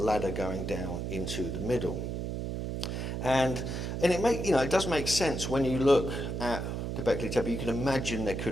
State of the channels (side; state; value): right; noise; hum, 3 dB below the sound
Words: going down into the middle. And it does make sense when you look at Göbekli Tepe. You can imagine there